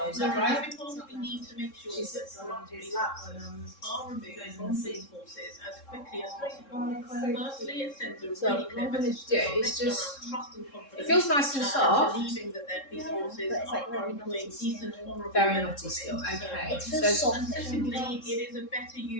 is that right? We need to make sure that are removed from these forces as quickly as possible. Firstly, it sends a really clear message to It's just, trust and confidence. it feels nice and soft. Believing that their police forces are employing decent, honourable. Very naughty still, okay. It feels soft. And secondly, it is a better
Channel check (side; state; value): right; late; 3.7 ms